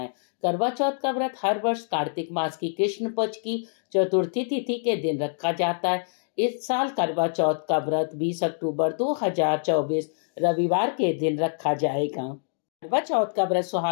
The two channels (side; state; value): right; silent; digital silence